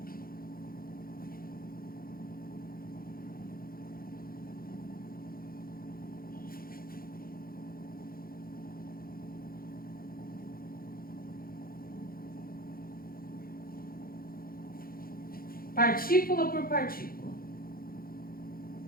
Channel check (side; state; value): right; late; 0.42 ms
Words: Partícula por partícula.